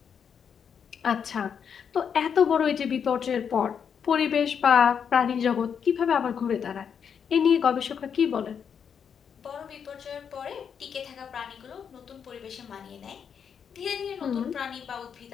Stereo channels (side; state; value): right; quieter; 7.3 dB